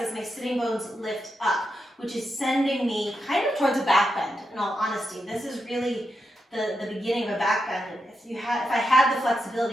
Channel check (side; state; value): both; normal; correlation 0.86